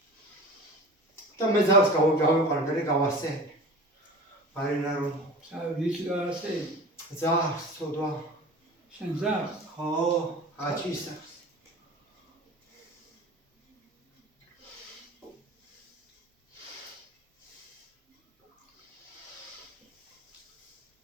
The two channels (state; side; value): normal; both; correlation 0.37